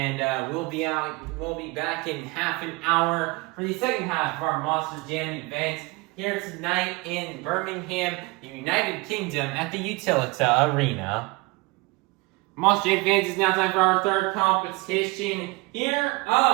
we'll be back in half an hour for the second half of our Monster Jam event here tonight in Birmingham, the United Kingdom at the Utilita Arena. Monster Jam fans, it's now time for our third competition here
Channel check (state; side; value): quieter; left; 24.6 dB